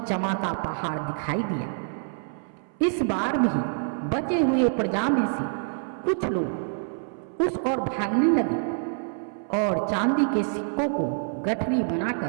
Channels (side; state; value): left; silent; 61 dB below the other